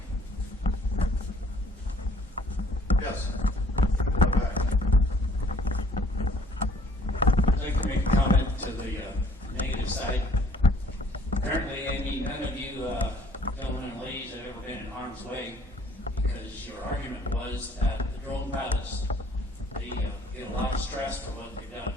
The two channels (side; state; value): both; normal; correlation 0.58